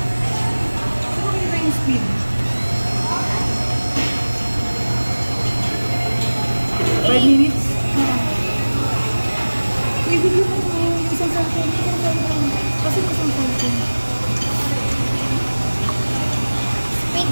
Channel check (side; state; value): both; inverted; correlation -1.00